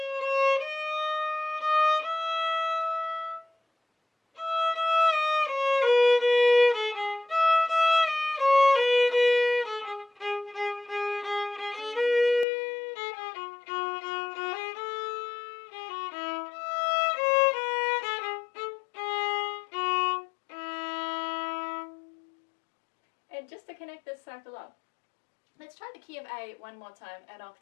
just to connect this circle up, let's try the key of A one more time an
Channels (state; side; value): drops out; right; at 12.5 s